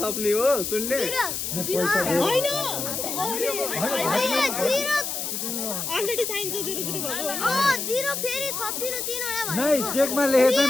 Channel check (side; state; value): left; noise; hiss, 3 dB below the sound